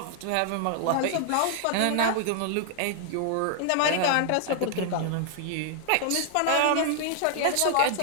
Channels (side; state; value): both; different; correlation -0.01